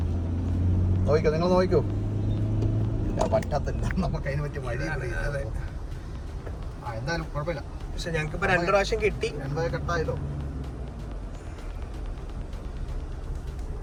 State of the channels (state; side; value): identical; both; correlation 1.00